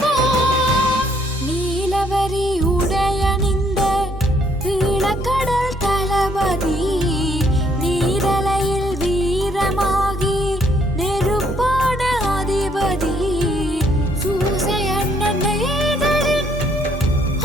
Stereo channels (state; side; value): normal; both; correlation 0.67